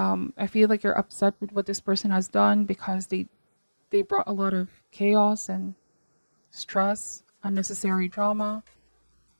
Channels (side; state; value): both; inverted; correlation -1.00